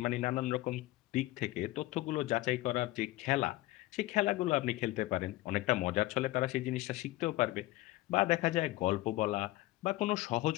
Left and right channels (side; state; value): right; quieter; 18.2 dB